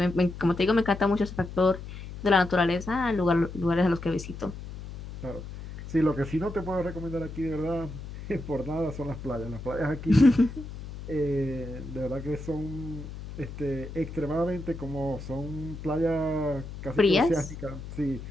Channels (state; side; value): noise; left; hum, 11 dB below the sound